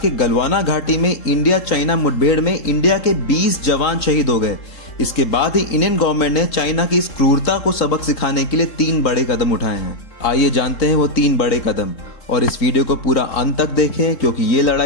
के गलवाना घाटी में इंडिया चाइना मुठभेड़ में इंडिया के 20 जवान शहीद हो गए, इसके बाद ही इंडियन गवर्नमेंट ने चाइना की इस क्रूरता को सबक सिखाने के लिए 3 बड़े कदम उठाए हैं। आइए जानते हैं वो 3 बड़े कदम, और इस वीडियो को पूरा अंत तक देखें क्योंकि ये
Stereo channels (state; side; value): late; right; 3.7 ms